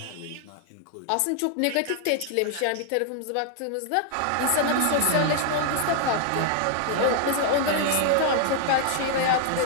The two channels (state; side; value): different; both; correlation 0.00